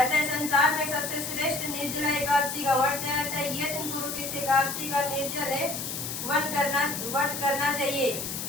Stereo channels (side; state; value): left; noise; hiss, 5 dB below the sound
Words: संसार में सबसे श्रेष्ठ निर्जला एकादशी का व्रत है। अतः यत्न पुरुष इस एकादशी का निर्जल व्रत करना चाहिए।